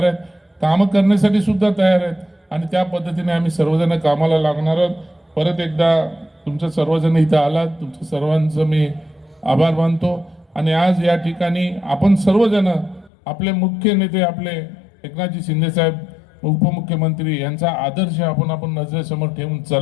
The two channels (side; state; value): right; drops out; at 13.1 s